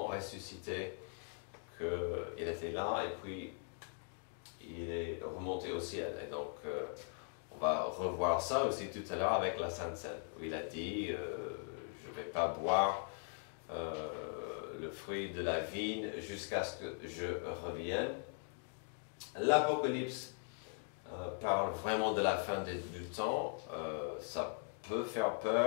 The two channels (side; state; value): right; silent; 51 dB below the other